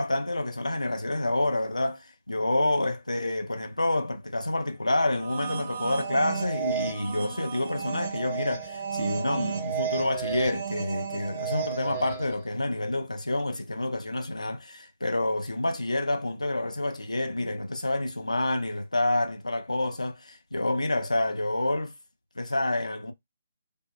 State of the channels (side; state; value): both; inverted; correlation -0.87